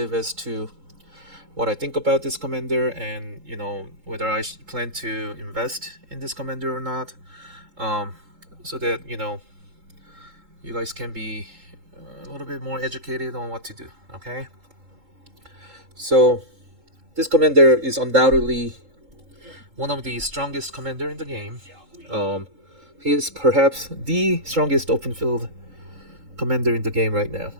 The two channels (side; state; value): left; late; 3.8 ms